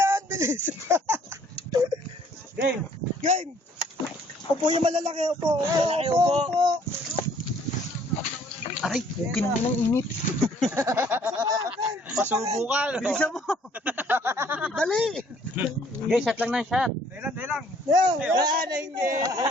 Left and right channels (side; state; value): both; normal; correlation 0.60